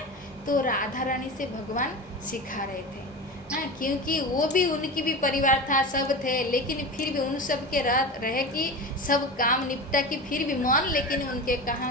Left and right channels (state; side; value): normal; both; correlation 0.27